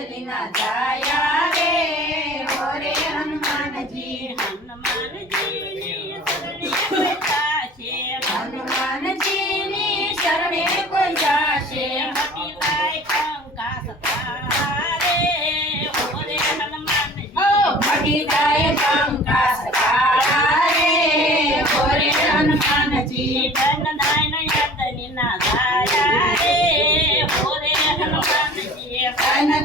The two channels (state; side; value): normal; both; correlation 0.45